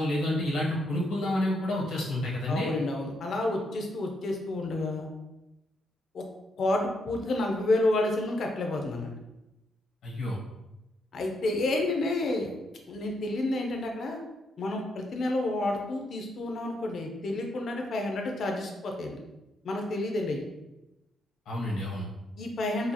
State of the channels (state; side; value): normal; both; correlation 0.78